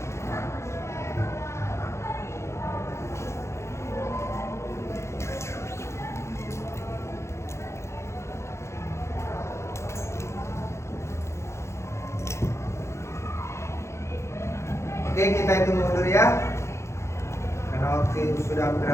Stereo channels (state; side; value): late; right; 0.13 ms